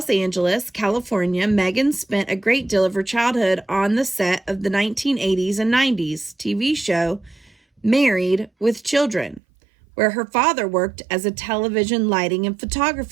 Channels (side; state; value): left; drops out; at 9.4 s